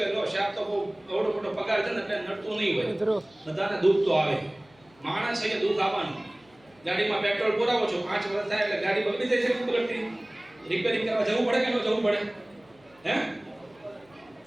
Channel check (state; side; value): noise; left; hum, 30 dB below the sound